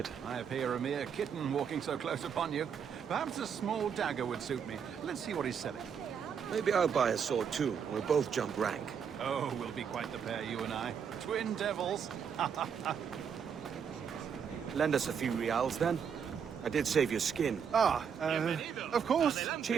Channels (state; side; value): quieter; left; 7.2 dB